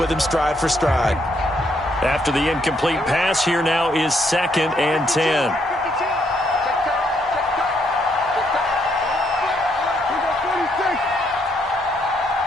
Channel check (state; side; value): normal; both; correlation 0.73